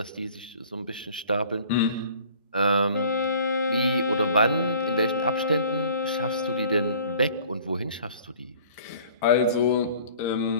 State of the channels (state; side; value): inverted; both; correlation -0.50